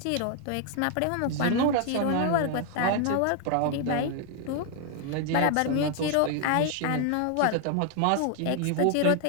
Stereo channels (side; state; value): both; different; correlation 0.00